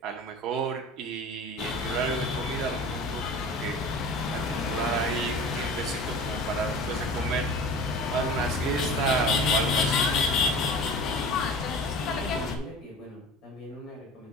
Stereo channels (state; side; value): normal; both; correlation 0.38